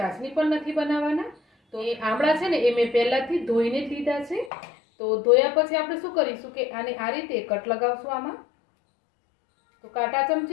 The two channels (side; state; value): right; drops out; at 4.5 s